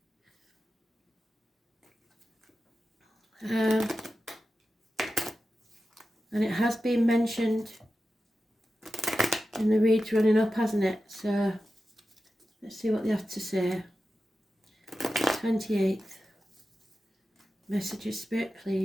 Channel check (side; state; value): both; normal; correlation 0.92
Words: And it has been mentioned in the reads running up, hasn't it? So let's see what they have to say. 28th. Messages, Spirit,